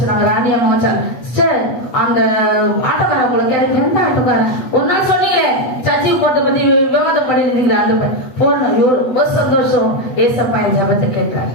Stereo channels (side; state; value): right; late; 8.2 ms